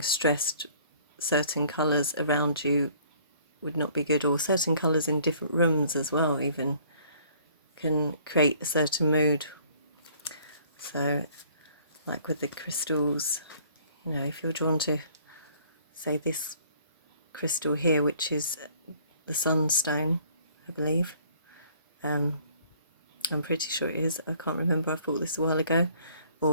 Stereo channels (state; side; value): inverted; both; correlation -0.57